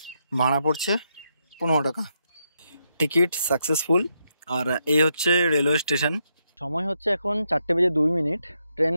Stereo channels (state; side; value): inverted; both; correlation -0.81